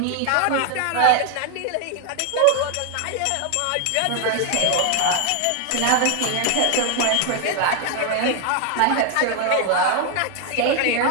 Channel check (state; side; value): different; both; correlation 0.00